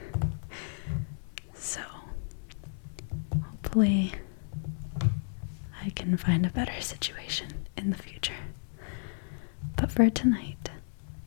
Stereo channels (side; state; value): right; silent; digital silence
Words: So hopefully I can find a better situation in the future. But for tonight,